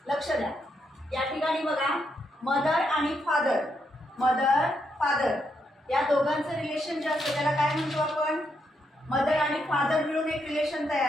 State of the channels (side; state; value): both; normal; correlation 0.79